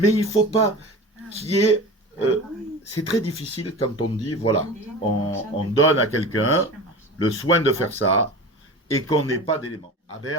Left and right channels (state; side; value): normal; both; correlation 0.33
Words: il ne faut pas qu'il y ait... c'est très difficile quand on dit, voilà, on donne à quelqu'un le soin de faire ça et qu'on n'ait pas d'éléments. À